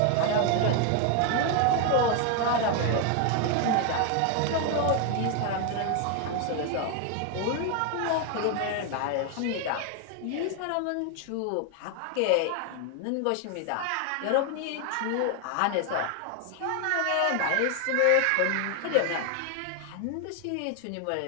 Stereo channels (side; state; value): both; different; correlation 0.01